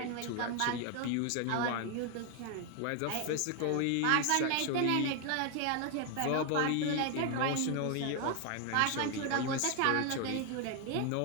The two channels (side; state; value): both; different; correlation 0.01